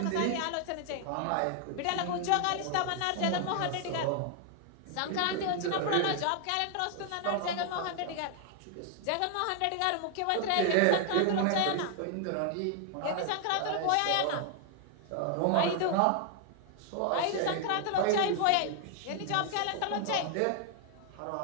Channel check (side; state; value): both; different; correlation 0.00